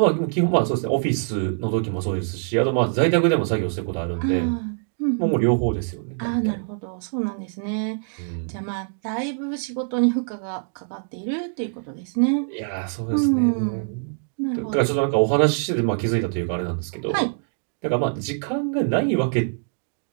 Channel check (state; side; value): silent; left; digital silence